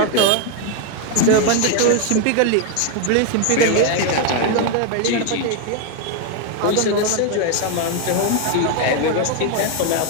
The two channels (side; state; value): both; different; correlation 0.01